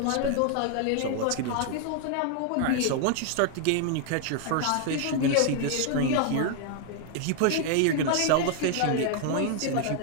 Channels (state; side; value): different; both; correlation 0.00